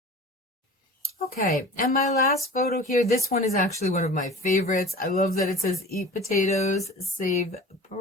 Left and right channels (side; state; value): both; normal; correlation 0.39